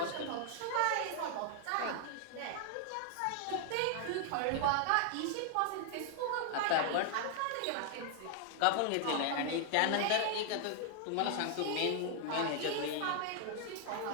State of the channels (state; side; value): different; both; correlation 0.00